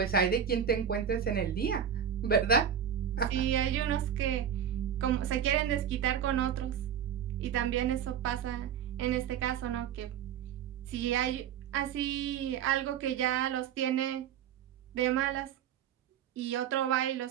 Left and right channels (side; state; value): left; quieter; 8.6 dB